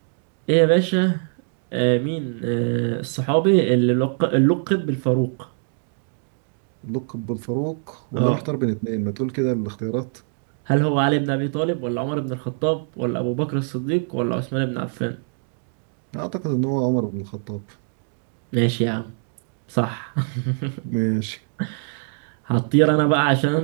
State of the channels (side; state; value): left; silent; 63 dB below the other